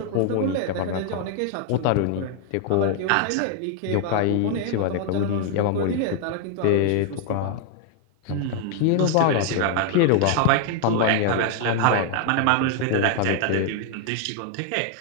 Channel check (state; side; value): different; both; correlation 0.00